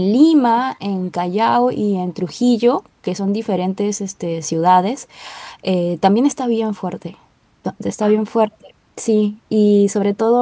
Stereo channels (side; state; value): both; identical; correlation 1.00